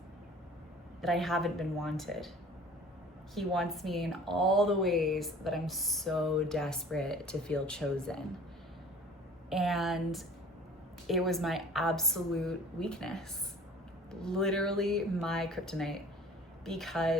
that I haven't been wanted. He wants me in all the ways that I'm so desperate to feel chosen. And it was my absolute weakness, literally my kryptonite,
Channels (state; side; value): normal; both; correlation 0.47